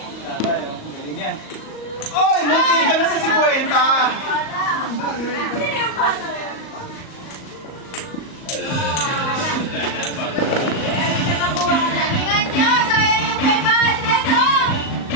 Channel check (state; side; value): late; right; 38 ms